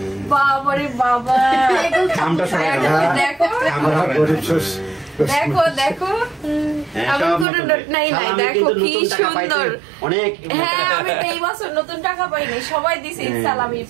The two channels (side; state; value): left; drops out; at 7.5 s